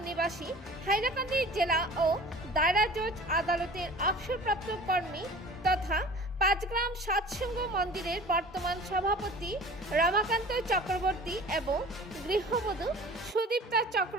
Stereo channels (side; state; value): both; normal; correlation 0.42